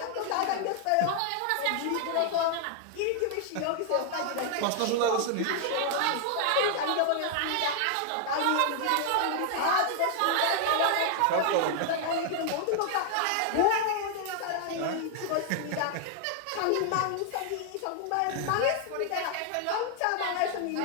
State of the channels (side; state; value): both; different; correlation 0.00